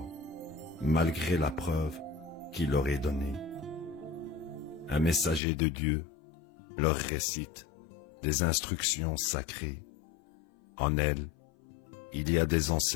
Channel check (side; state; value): right; drops out; at 5.4 s